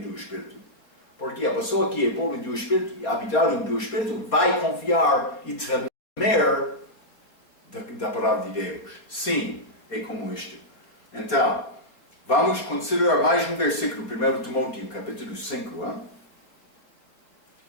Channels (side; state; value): right; late; 4.2 ms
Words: espírito. Porque a pessoa que é pobre do espírito e habitado do espírito vai confiar e tremer da palavra de Deus. Sim, é como isto. Então, vamos considerar mais um versículo, 1 Timóteo, capítulo 5.